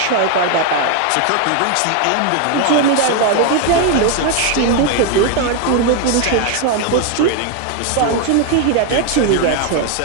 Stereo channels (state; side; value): different; both; correlation 0.01